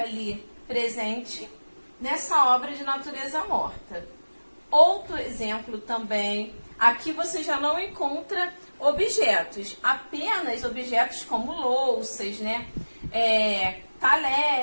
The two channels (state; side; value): inverted; both; correlation -1.00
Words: ali presente nessa obra de natureza morta. Outro exemplo também, aqui você já não encontra objetos, apenas objetos como louças, né?